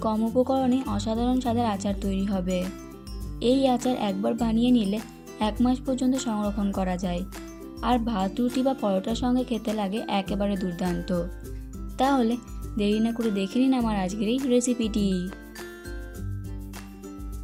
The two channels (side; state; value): both; identical; correlation 1.00